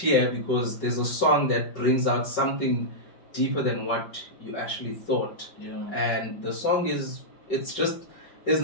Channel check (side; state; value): right; late; 5.3 ms